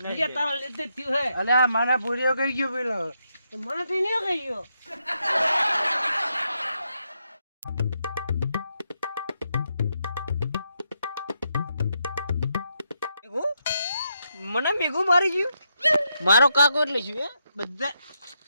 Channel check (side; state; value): both; inverted; correlation -0.80